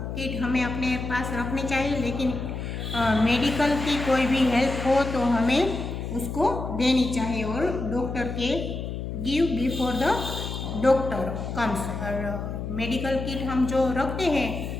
किट हमें अपने पास रखनी चाहिए, लेकिन मेडिकल की कोई भी हेल्प हो तो हमें उसको देनी चाहिए और डॉक्टर के give before the doctor comes. और मेडिकल किट हम जो रखते हैं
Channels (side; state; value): left; noise; hum, 5 dB below the sound